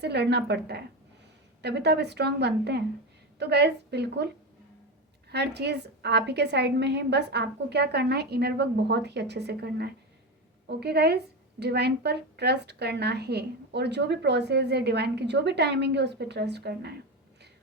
लड़ना पड़ता है, तभी तो आप स्ट्रांग बनते हैं। तो गाइज बिल्कुल हर चीज़ आप ही के साइड में है, बस आपको क्या करना है, इनर वर्क बहुत ही अच्छे से करना है। ओके गाइज, डिवाइन पर ट्रस्ट करना है और जो भी प्रोसेस है डिवाइन की, जो भी टाइमिंग है उस पर ट्रस्ट करना है।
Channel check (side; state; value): both; normal; correlation 0.18